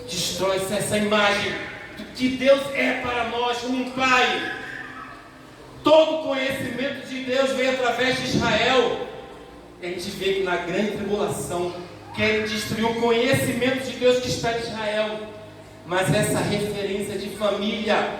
destrói-se essa imagem do que Deus é para nós como um Pai. Todo conhecimento de Deus veio através de Israel. E a gente vê que na grande tribulação querem destruir o conhecimento de Deus que está em Israel. Mas essa referência de família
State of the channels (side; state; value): both; identical; correlation 1.00